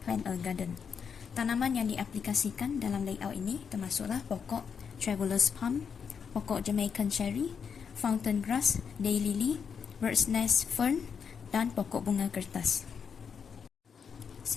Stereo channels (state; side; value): quieter; right; 6.6 dB